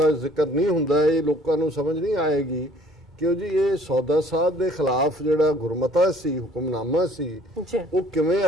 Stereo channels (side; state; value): both; normal; correlation 0.57